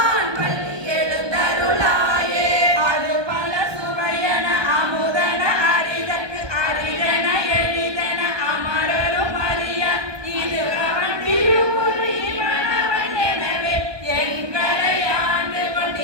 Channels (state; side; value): late; left; 1.2 ms